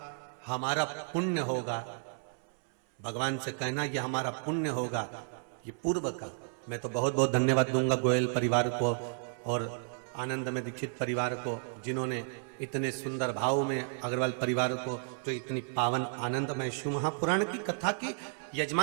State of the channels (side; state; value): left; silent; 56 dB below the other